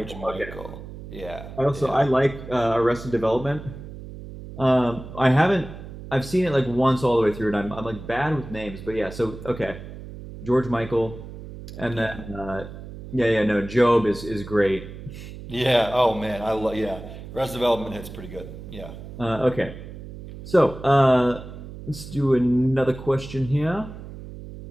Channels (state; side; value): noise; right; hum, 13 dB below the sound